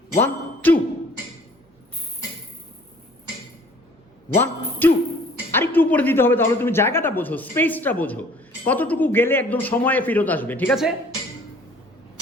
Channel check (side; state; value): both; normal; correlation 0.53